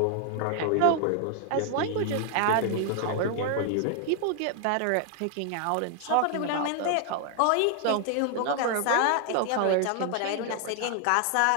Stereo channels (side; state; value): both; different; correlation 0.00